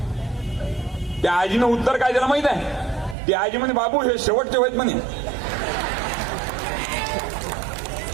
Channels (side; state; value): left; drops out; at 3.2 s